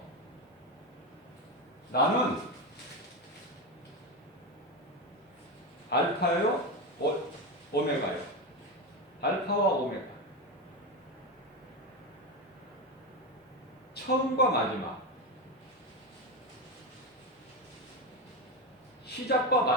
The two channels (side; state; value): both; normal; correlation 0.14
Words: 나는 알파요, 오메가요. 알파와 오메가. 처음과 마지막. 시작과